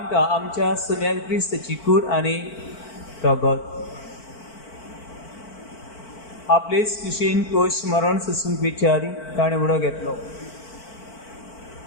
आमच्या सुम्या क्रिस्ताची कूड आनी रगत आपलेच कुशीन कोश मरण सोसूंक विचारी ताणें उडो घेतलो.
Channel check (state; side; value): late; right; 4.5 ms